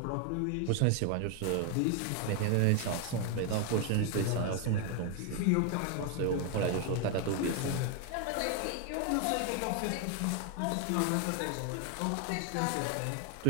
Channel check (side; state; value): both; different; correlation 0.01